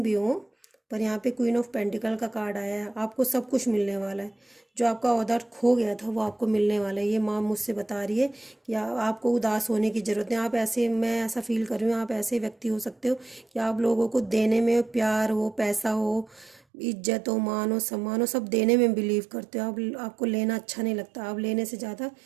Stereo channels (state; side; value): drops out; left; at 16.6 s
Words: भी हो, पर यहाँ पे क्वीन ऑफ पेंटिकल का कार्ड आया है। आपको सब कुछ मिलने वाला है। जो आपका ऑर्डर खो गया था वो आपको मिलने वाला है। ये माँ मुझसे बता रही है कि आपको उदास होने की ज़रूरत नहीं। आप ऐसे, मैं ऐसा फील कर रही हूँ, आप ऐसे व्यक्ति हो सकते हो कि आप लोगों को देने में, प्यार हो, पैसा हो, इज्जत हो, मान हो, सम्मान हो, सब देने में बिलीव करते हो। आपको लेना अच्छा नहीं लगता। आप लेने से ज़्यादा